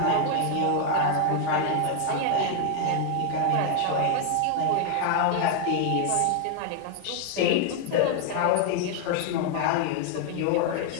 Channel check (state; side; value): different; both; correlation 0.00